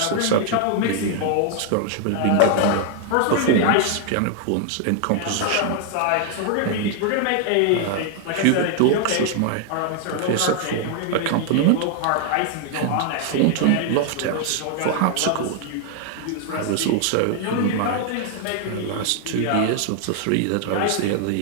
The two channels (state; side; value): different; both; correlation 0.00